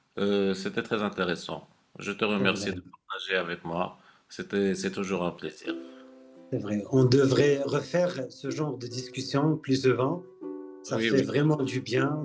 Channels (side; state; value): both; identical; correlation 1.00